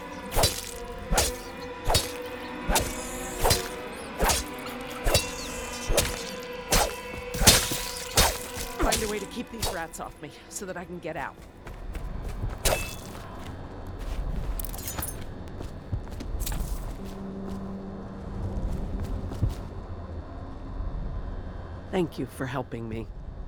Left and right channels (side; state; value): both; identical; correlation 1.00